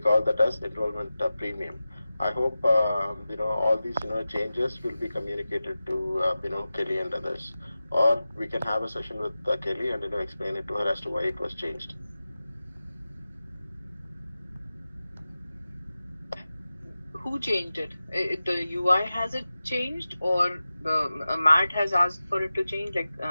that as enrollment premium. I hope, all these, changes will be communicated to, Kelly and others, or we can have a session with Kelly and explain it to her as to why it was changed. Who changed it? The UI has it changed, or the Matt has asked for it to change? Like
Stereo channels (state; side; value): inverted; both; correlation -0.95